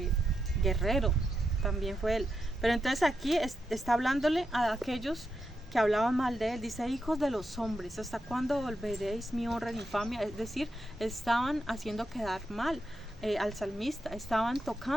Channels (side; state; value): both; normal; correlation 0.85